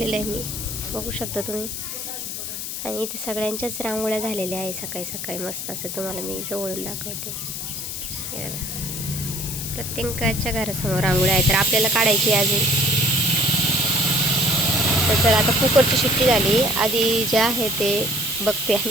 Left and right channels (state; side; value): noise; left; hiss, 6 dB below the sound